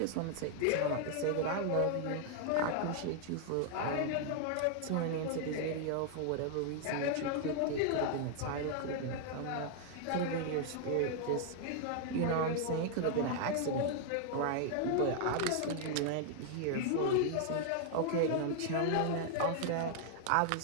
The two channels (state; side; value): different; both; correlation 0.00